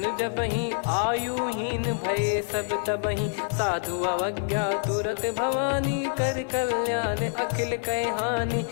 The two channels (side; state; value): right; silent; 60 dB below the other